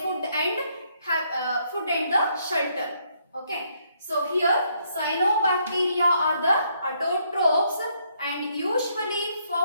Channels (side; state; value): both; inverted; correlation -0.72